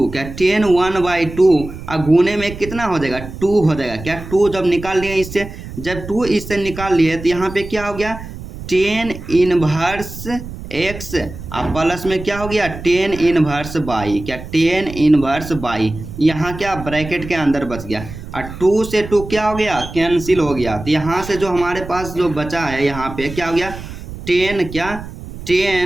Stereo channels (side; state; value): right; noise; rumble, 12 dB below the sound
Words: क्या 10 1 बाई टू, और गुने में कितना हो जाएगा, 2 हो जाएगा। क्या 2 जब निकाल लिए इससे, जब 2 इससे निकाल लिए तो यहाँ पे क्या हो गया, 10 इनवर्स एक्स, अब प्लस में क्या हो गया, 10 इनवर्स बाई, क्या 10 इनवर्स बाई, यहाँ क्या ब्रैकेट के अंदर बच गया, और 2 से 2 क्या हो गया, कैंसिल हो गया। तो यहाँ से जो हमारे पास जो बचा है यहाँ पे क्या हो गया, 10, क्या